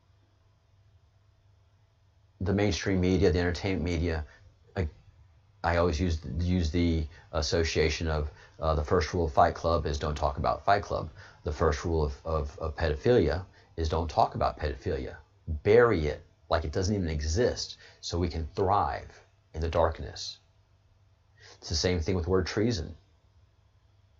the mainstream media, the entertainment media, I always use the association of the first rule of Fight Club is don't talk about Fight Club. The first rule of pedophilia is don't talk about pedophilia. Bury it like it doesn't even exist so we can thrive in the darkness. It's the same thing with the word treason.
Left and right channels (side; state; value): both; identical; correlation 1.00